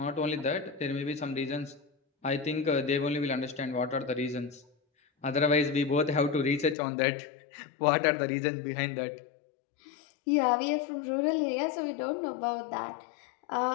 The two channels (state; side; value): drops out; right; at 6.8 s